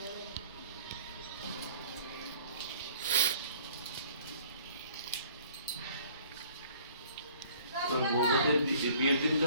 বিয়ের দিন তো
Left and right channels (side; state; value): both; inverted; correlation -0.55